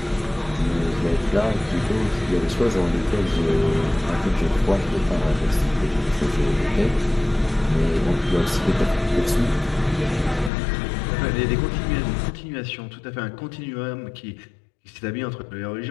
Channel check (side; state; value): right; drops out; at 10.5 s